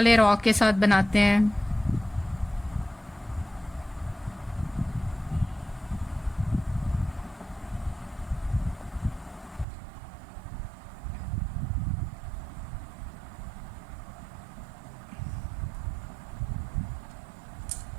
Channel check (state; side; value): drops out; left; at 9.7 s